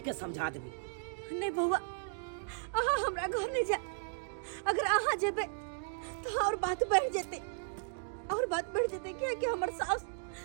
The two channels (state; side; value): silent; left; digital silence